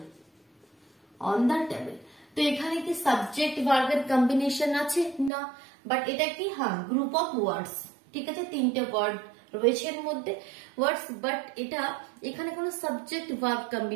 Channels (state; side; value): drops out; left; at 5.3 s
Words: তো এখানে কি সাবজেক্ট ভার্বের কম্বিনেশন আছে? না, বাট এটা কি? হ্যাঁ, গ্রুপ অফ ওয়ার্ডস। ঠিক আছে, তিনটে ওয়ার্ড রয়েছে এর মধ্যে ওয়ার্ডস, বাট এটা এখানে কোনো সাবজেক্ট ভার্ব